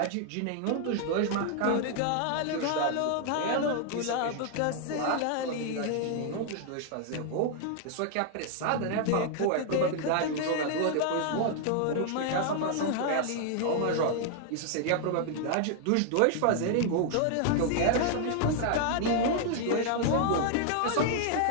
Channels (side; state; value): both; different; correlation 0.00